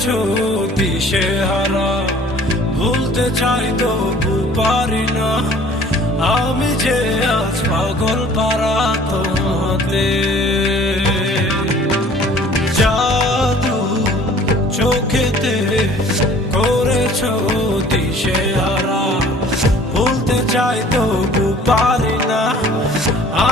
দিশেহারা, ভুলতে চাই তবু পারি না। আমি যে আজ পাগল পারা তোমাতে। জাদু চোখেতে করেছো দিশেহারা, ভুলতে চাই তবু পারি না।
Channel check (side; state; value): both; normal; correlation 0.52